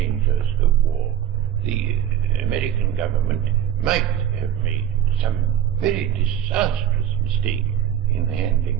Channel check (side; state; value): left; quieter; 10.4 dB